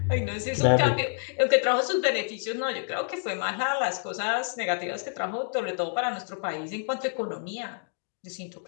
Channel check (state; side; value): silent; right; 58 dB below the other